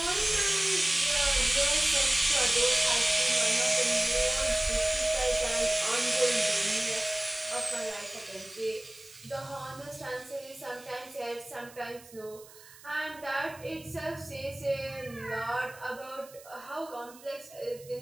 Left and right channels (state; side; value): noise; right; hiss, 21 dB below the sound